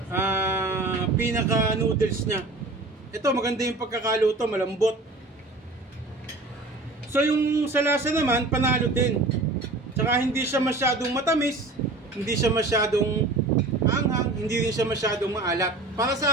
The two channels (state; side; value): quieter; left; 3.0 dB